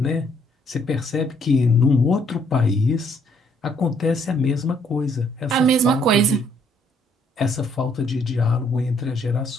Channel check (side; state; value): both; normal; correlation 0.67